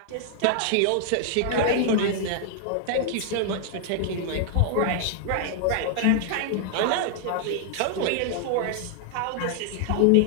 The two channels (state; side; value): different; both; correlation 0.00